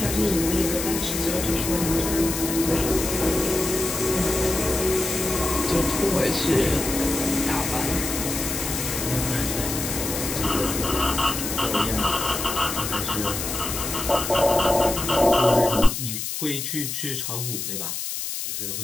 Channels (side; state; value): left; noise; hiss, 4 dB below the sound